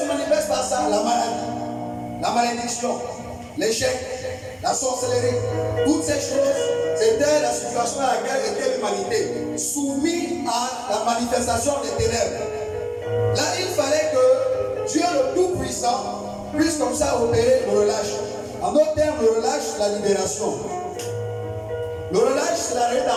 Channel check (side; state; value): both; identical; correlation 1.00